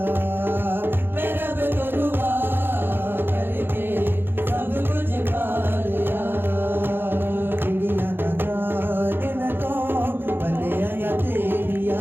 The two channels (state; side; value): late; left; 0.10 ms